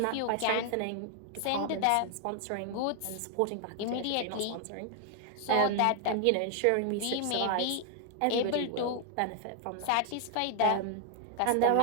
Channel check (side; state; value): both; different; correlation 0.00